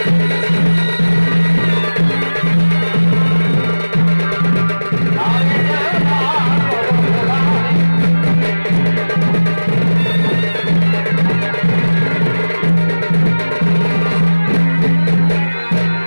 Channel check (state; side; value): inverted; both; correlation -1.00